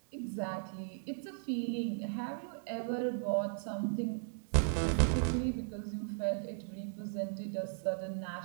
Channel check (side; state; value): left; silent; digital silence